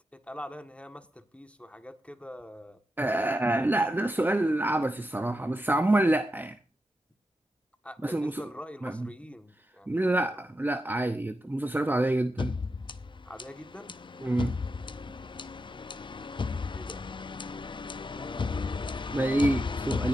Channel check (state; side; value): normal; both; correlation 0.87